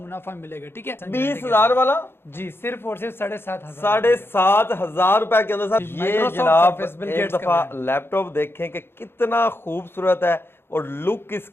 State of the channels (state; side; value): late; right; 0.11 ms